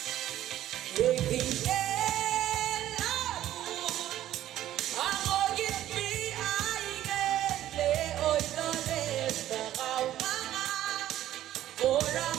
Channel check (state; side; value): quieter; left; 12.9 dB